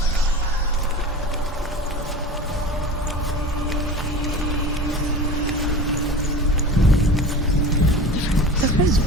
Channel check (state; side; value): normal; both; correlation 0.35